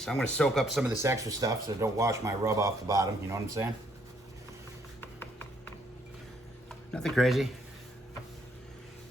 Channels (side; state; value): both; normal; correlation 0.69